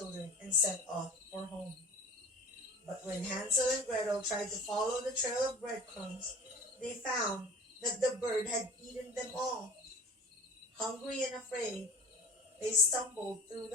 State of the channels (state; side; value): normal; both; correlation 0.39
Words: and set off for home. But when Hansel and Gretel tried to follow the trail of breadcrumbs, they found that the bird had eaten them all. Hungry and afraid, they stumbled through